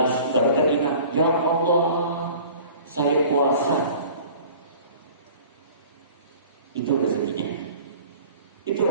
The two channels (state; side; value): inverted; both; correlation -0.46